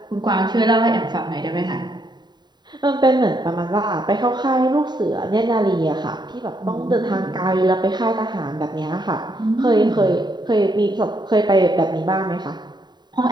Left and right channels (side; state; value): left; late; 0.21 ms